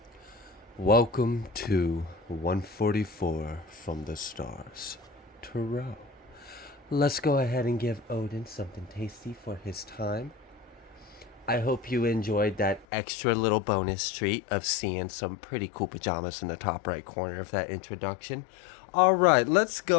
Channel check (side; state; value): right; drops out; at 12.9 s